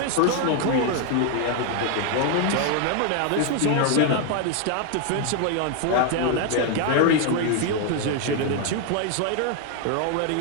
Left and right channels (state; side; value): different; both; correlation 0.00